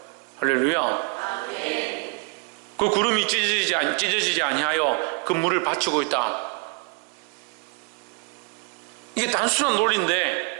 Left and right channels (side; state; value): left; quieter; 31.9 dB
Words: 할렐루야. 그 구름이 찢어지지 아니하여 그 물을 받치고 있다. 이게 단순한